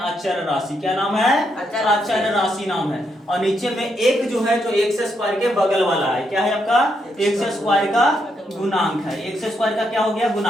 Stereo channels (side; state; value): both; normal; correlation 0.79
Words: अचर राशि। क्या नाम है? अचर राशि नाम है। और नीचे में एक जो है, जो एक्स स्क्वायर के बगल वाला है, क्या है आपका? एक्स स्क्वायर का गुणांक है। एक्स स्क्वायर का क्या हो गया?